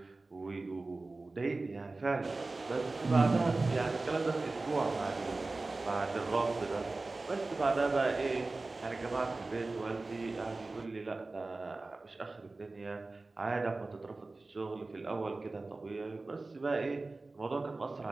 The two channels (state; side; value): quieter; left; 3.4 dB